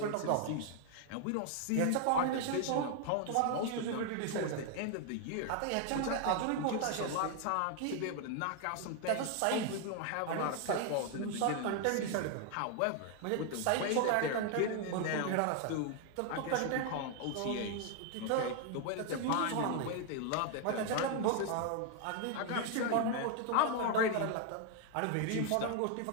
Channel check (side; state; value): both; different; correlation 0.01